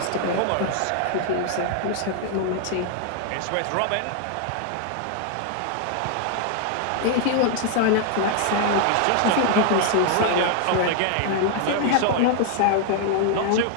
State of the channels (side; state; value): both; different; correlation 0.00